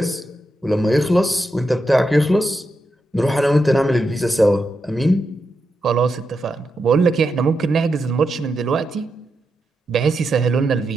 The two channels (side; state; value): both; normal; correlation 0.86